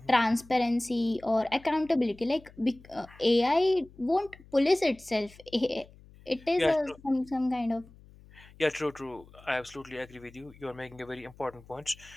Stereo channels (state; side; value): noise; left; hum, 23 dB below the sound